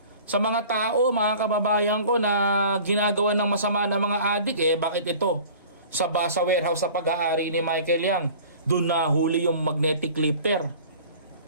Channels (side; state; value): both; inverted; correlation -0.44